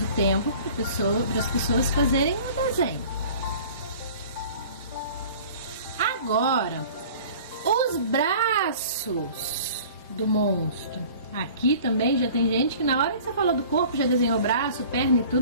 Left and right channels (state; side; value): inverted; both; correlation -0.46